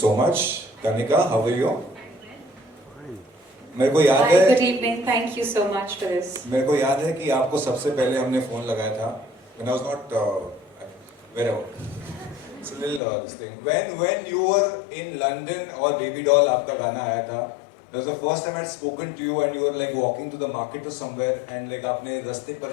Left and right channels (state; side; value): drops out; right; at 13.0 s